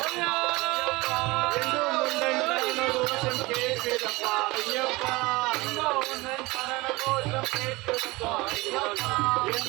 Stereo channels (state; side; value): quieter; left; 22.2 dB